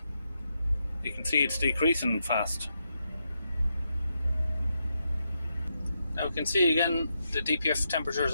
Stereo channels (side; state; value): both; inverted; correlation -0.83